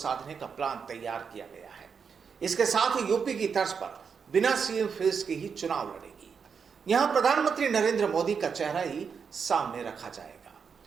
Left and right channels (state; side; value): quieter; left; 6.2 dB